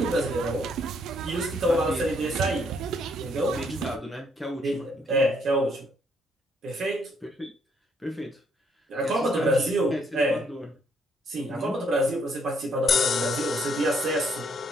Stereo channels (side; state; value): both; normal; correlation 0.70